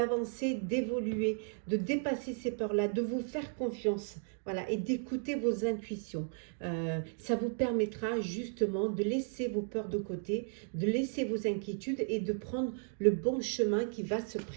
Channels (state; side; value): silent; left; 55 dB below the other